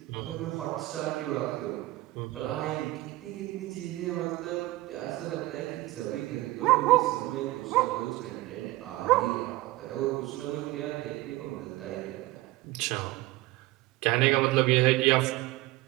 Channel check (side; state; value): left; quieter; 18.9 dB